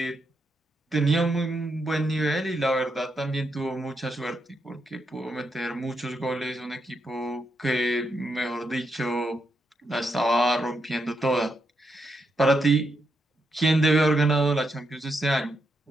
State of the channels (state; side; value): normal; both; correlation 0.82